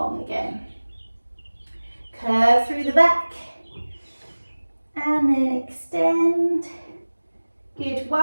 again. Curve through the back, and then extend. Good,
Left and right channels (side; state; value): both; inverted; correlation -1.00